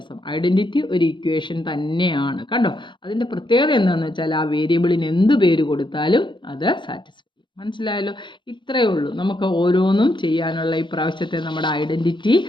ഐഡൻറ്റിറ്റി ഒരു ഇക്വേഷൻ തന്നെയാണ്. കണ്ടോ, അതിൻ്റെ പ്രത്യേകത എന്താണെന്ന് വെച്ചാൽ ആ വേരിയബിളിന് എന്ത് പേര് കൊടുത്താലും അത് സാറ്റിസ്ഫൈ. മനസ്സിലായല്ലോ. ഇത്രയേ ഉള്ളൂ നമുക്ക് ഓരോന്നും ചെയ്യാനുള്ള ഈ പ്രാവശ്യത്തെ നമ്മുടെ ഐഡൻറ്റിറ്റി.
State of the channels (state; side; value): late; right; 0.23 ms